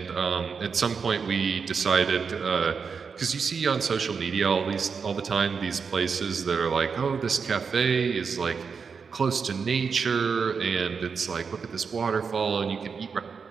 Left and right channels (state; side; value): quieter; left; 5.7 dB